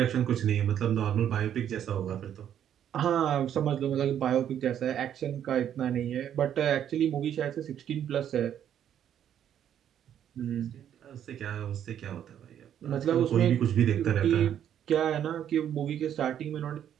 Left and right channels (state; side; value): quieter; left; 9.8 dB